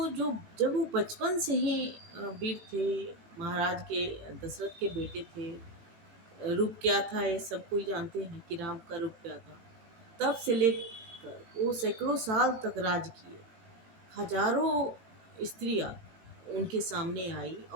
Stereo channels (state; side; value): late; left; 18 ms